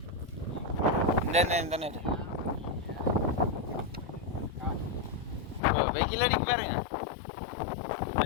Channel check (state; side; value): drops out; right; at 5.6 s